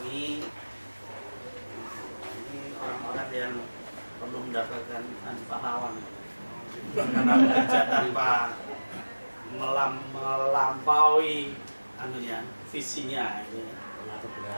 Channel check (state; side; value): inverted; both; correlation -1.00